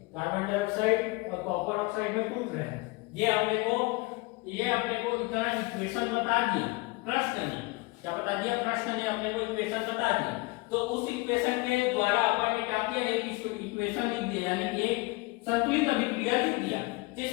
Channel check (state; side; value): quieter; right; 24.2 dB